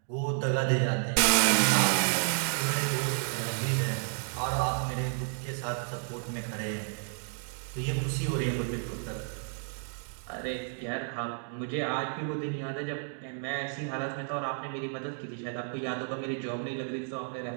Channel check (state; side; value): silent; left; 57 dB below the other